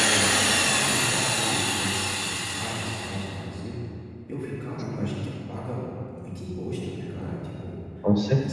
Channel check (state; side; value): identical; both; correlation 1.00